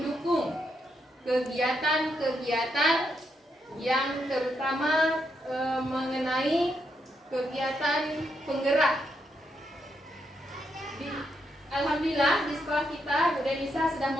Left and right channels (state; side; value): normal; both; correlation 0.80